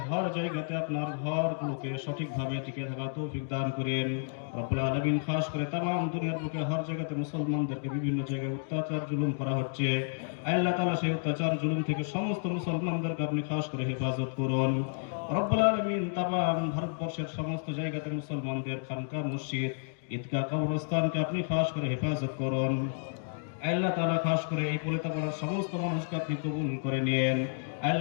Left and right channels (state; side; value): silent; right; digital silence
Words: হর জায়গাতে আপনার ঘরগুলোকে সঠিকভাবে টিকে থাকার তৌফিক দান করেন। রব্বুল আলামিন খাস করে তামাম দুনিয়ার বুকে হর জায়গাতে মুসলমানদেরকে বিভিন্ন জায়গায় অত্যাচার জুলুম করা হচ্ছে। আয় আল্লাহ তাআলা সেই অত্যাচার জুলুম থেকে সমস্ত মুসলমানদেরকে আপনি খাস করে হেফাজত করুন। রব্বুল আলামিন তামাম ভারতবর্ষের সমস্ত জায়গাতে মুসলমানদের খানকা মসজিদ ঈদগাহ কবরস্থানকে আপনি খাস করে হেফাজত করুন। আল্লাহ তাআলা খাস করে এই পলিতাপাড়ার সমস্ত মানুষকে আপনি কবুল করে নিয়েন।